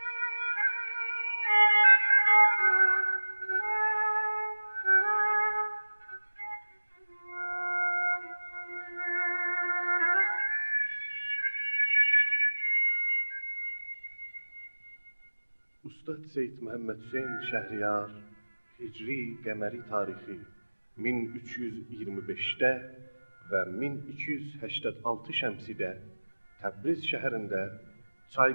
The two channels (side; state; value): both; inverted; correlation -1.00